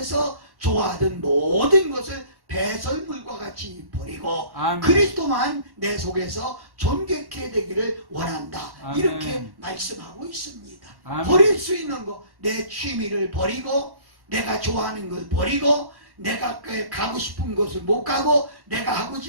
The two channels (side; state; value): left; late; 1.1 ms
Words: 좋아하던 모든 것을 배설물과 같이 버리고 아멘. 그리스도만 내 속에서 존귀케 되기를 원한다. 아멘. 이렇게 말씀하고 있습니다. 아멘. 버릴 수 있는 거, 내 취미를 버리고 내가 좋아하는 걸 버리고 내가 가고 싶은 곳을 못 가고 내가 하고